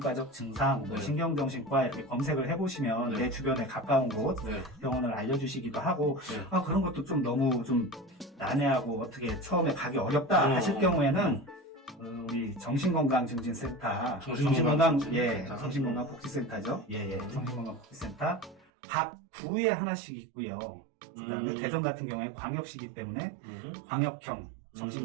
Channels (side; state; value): left; drops out; at 18.6 s